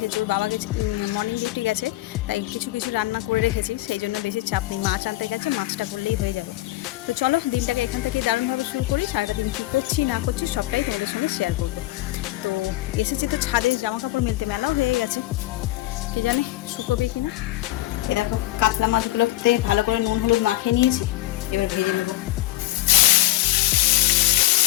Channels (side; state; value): right; quieter; 16.9 dB